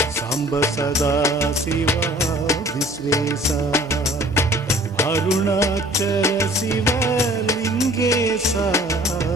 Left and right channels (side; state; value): both; normal; correlation 0.52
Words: सांब सदा शिवा विश्वेशा, अरुणाचल शिवलिंगेशा,